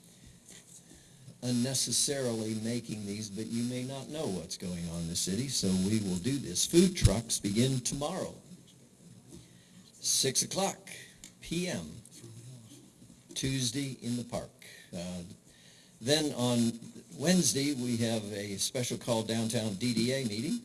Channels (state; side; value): identical; both; correlation 1.00